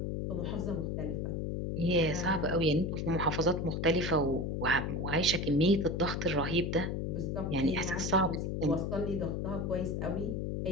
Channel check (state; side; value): noise; left; hum, 1 dB below the sound